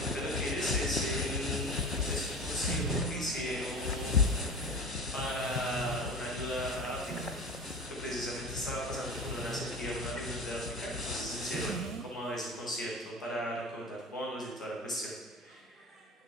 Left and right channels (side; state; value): both; normal; correlation 0.34